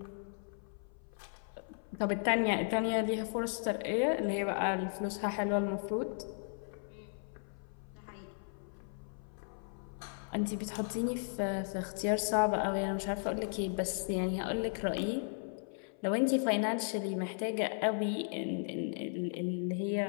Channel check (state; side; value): silent; right; 54 dB below the other